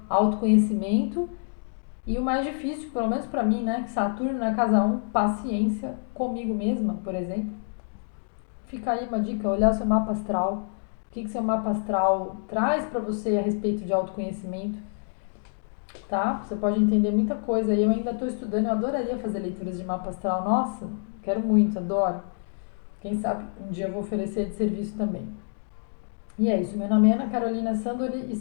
autoconhecimento e o mais difícil, pelo menos pra mim, né, que Saturno na casa 1, paciência comigo mesma, por exemplo. Fica aí uma dica, olhar o seu mapa astral. O que seu mapa astral traz pra você a respeito de autoconhecimento, tá? Você pode entender muita coisa. Eu ainda estou estudando, eu adoraria fazer leituras de mapa astral. Nossa, quero muito, adoro. Quem sabe um dia eu vou oferecer de serviço também. E é isso, meu nome é Ana Carolina Sandori,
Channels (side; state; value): right; silent; digital silence